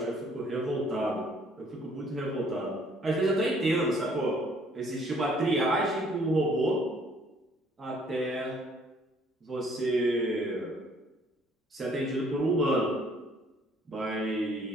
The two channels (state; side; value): normal; both; correlation 0.61